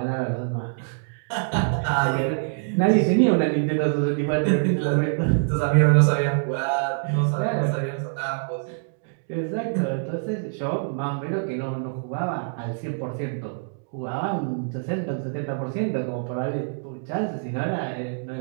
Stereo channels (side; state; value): left; silent; 62 dB below the other